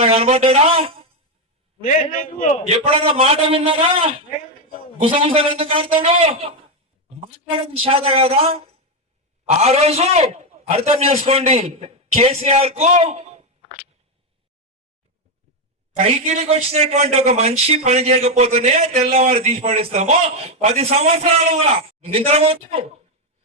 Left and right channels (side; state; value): both; normal; correlation 0.06